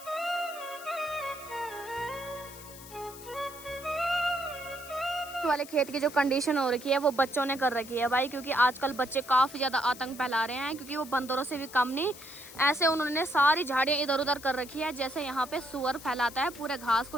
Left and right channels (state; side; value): noise; left; hiss, 16 dB below the sound